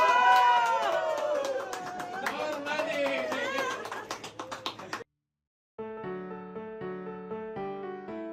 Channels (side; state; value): both; identical; correlation 1.00